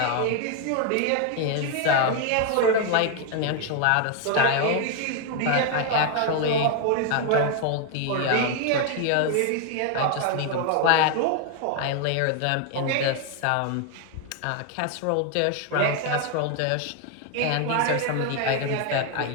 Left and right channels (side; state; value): both; different; correlation 0.00